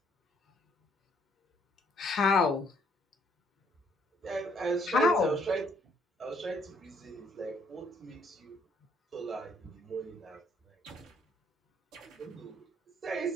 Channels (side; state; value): both; normal; correlation 0.67